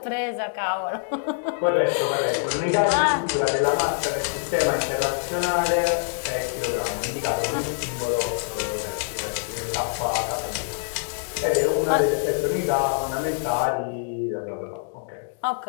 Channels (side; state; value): right; silent; digital silence